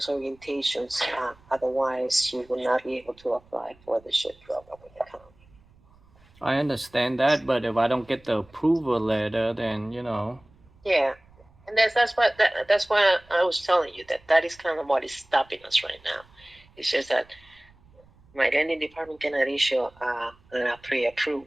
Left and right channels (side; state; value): right; noise; rumble, 29 dB below the sound